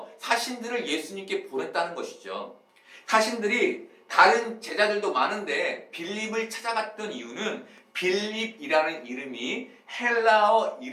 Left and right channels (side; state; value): both; identical; correlation 1.00